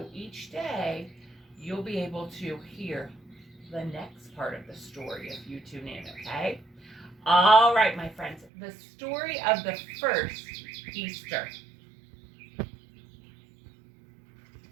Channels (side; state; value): left; drops out; at 8.5 s